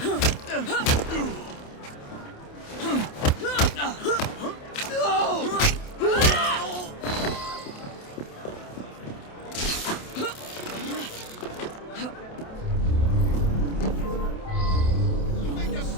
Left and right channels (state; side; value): late; right; 28 ms